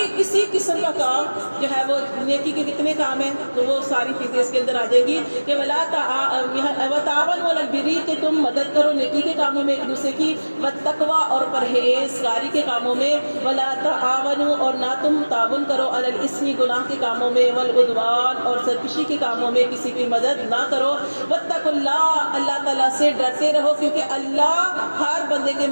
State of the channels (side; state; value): both; inverted; correlation -1.00